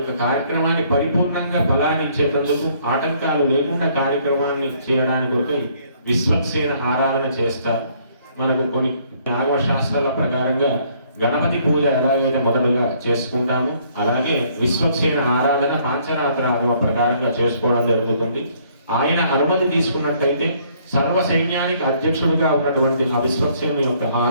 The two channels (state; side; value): inverted; both; correlation -0.64